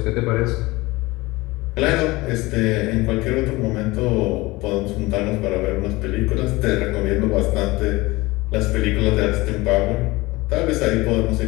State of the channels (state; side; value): quieter; right; 21.3 dB